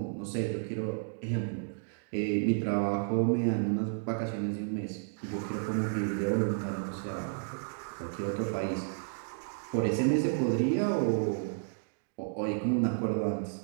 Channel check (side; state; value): left; silent; digital silence